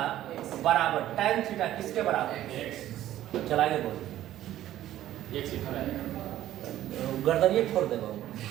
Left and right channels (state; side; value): quieter; left; 13.2 dB